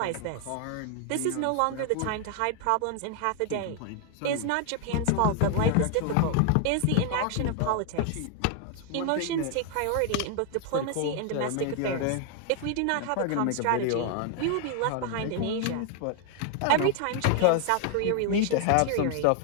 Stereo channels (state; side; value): different; both; correlation 0.00